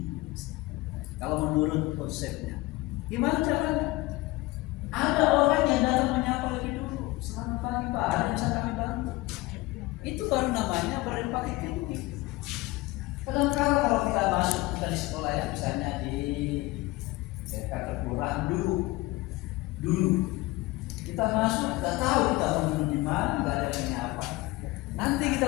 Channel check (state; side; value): quieter; right; 20.3 dB